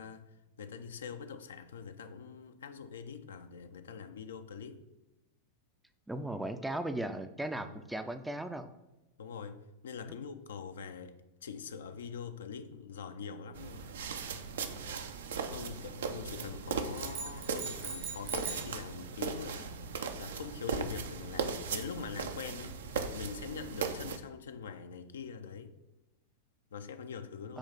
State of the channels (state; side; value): normal; both; correlation -0.17